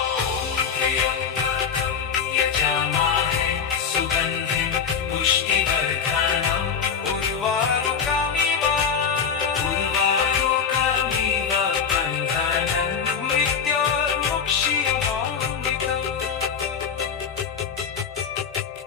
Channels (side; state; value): right; quieter; 6.8 dB